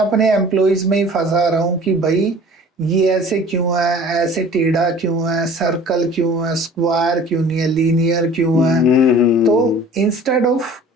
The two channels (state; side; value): normal; both; correlation 0.46